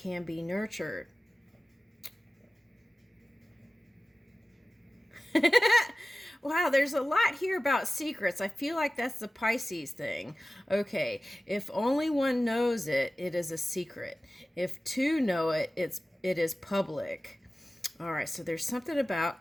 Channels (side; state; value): both; normal; correlation 0.96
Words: be nurtured. Wow, there's a lot here about secrets. I feel like that's the Pisces thing. Okay, if only one knows it, it is a secret. If two know it, it is public. All right, so there's something